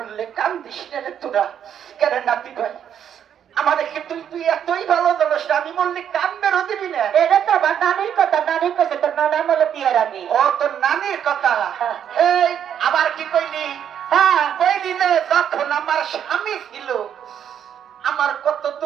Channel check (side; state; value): left; quieter; 9.0 dB